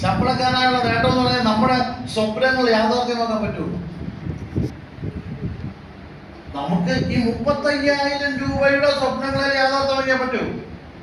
ശമ്പളക്കാരനായുള്ള നേട്ടം എന്ന് പറഞ്ഞാൽ നമ്മുടെ സ്വപ്നങ്ങൾ യാഥാർത്ഥ്യമാക്കാൻ പറ്റുള്ളൂ. നമുക്ക് ഈ 35,000 രൂപയുടെ സ്വപ്നങ്ങളെ യാഥാർത്ഥ്യമാക്കാൻ പറ്റൂ.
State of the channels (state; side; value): identical; both; correlation 1.00